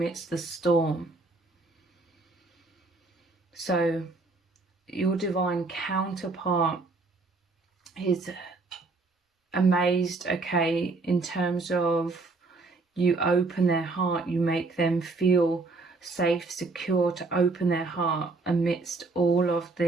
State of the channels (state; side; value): quieter; left; 3.6 dB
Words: the storm. So your divine counterpart is amazed, okay, in terms of you open their heart, you make them feel safe, secure to open their heart amidst all of